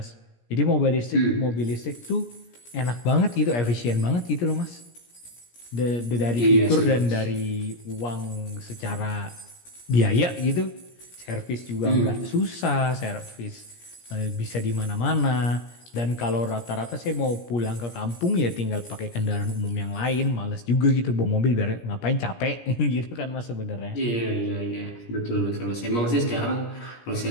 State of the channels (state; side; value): late; right; 17 ms